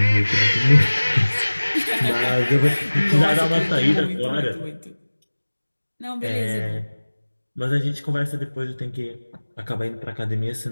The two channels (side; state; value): both; inverted; correlation -1.00